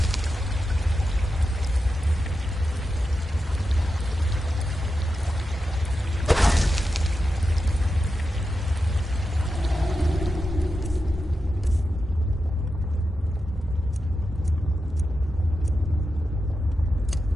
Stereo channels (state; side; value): normal; both; correlation 0.90